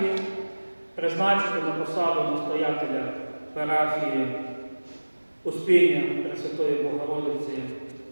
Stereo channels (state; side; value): inverted; both; correlation -1.00